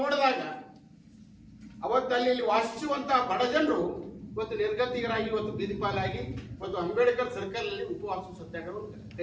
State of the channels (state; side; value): identical; both; correlation 1.00